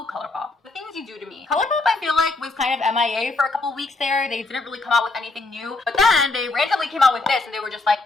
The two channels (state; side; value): quieter; right; 3.3 dB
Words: ColourPop. The things you do to me. ColourPop, I feel like, was kind of MIA for a couple weeks there. They didn't really come out with anything new. But then they randomly came out with this, and they were just like,